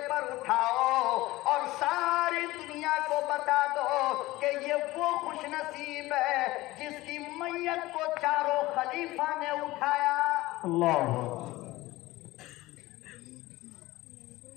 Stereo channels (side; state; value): right; quieter; 18.8 dB